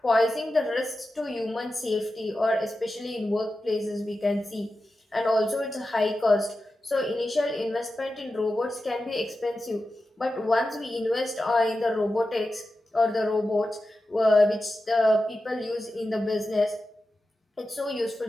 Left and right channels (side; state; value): both; normal; correlation 0.92